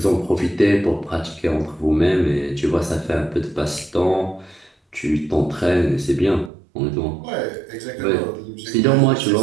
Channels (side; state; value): left; drops out; at 6.5 s